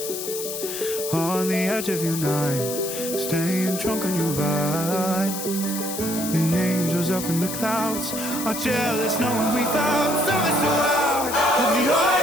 on the edge of your night, staying drunk on your vine. The angels up in the clouds are jealous knowing we found something so out of the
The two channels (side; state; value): left; noise; hiss, 6 dB below the sound